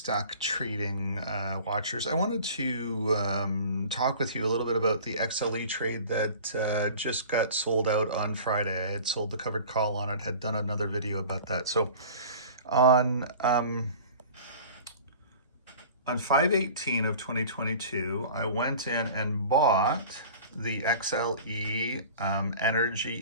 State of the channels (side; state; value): both; inverted; correlation -0.42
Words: trading watchers. I wanted to talk with you a little bit about the XLE trade that just got sold out on Friday. I had sold the covered call on it, had done another video about that. So on 5/18 of 2022, I went in and bought the XLE Energy